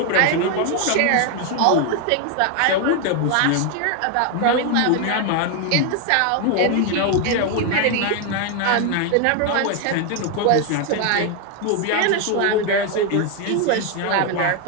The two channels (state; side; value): different; both; correlation 0.01